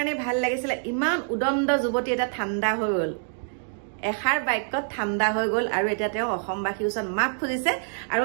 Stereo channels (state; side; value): silent; left; digital silence